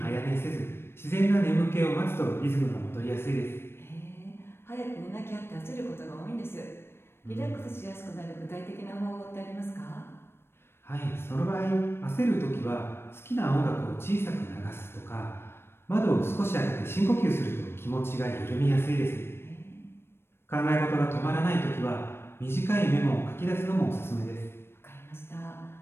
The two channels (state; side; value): late; right; 0.12 ms